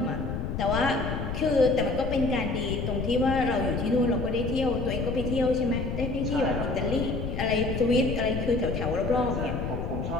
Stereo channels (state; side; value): noise; left; rumble, 4 dB below the sound